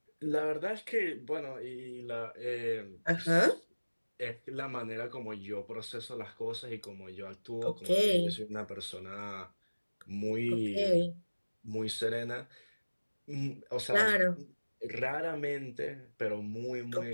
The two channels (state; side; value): inverted; both; correlation -1.00